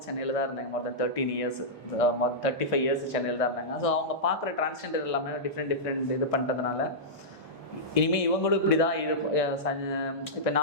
சென்னையில் தான் இருந்தாங்க மொத்தம் 13 years, 35 years சென்னையில் தான் இருந்தாங்க. ஸோ அவங்க பார்க்குற டிரான்ஸ்ஜெண்டர் எல்லாமே டிஃப்ரெண்ட் இது பண்ணுறதுனால இனிமேல் இவங்களும் இப்படி தான் இப்போ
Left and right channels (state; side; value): normal; both; correlation -0.13